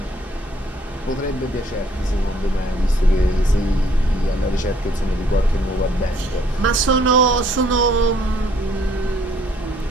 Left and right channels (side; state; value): both; normal; correlation 0.63